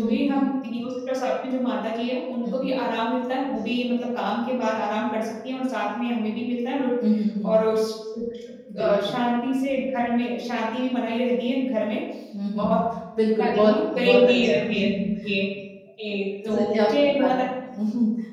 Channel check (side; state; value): both; identical; correlation 1.00